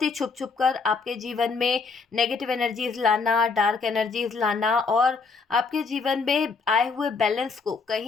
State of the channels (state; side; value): quieter; right; 4.6 dB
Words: ही छुप छुप कर आपके जीवन में नेगेटिव एनर्जीज लाना, डार्क एनर्जीज लाना, और आपके जीवन में आए हुए बैलेंस को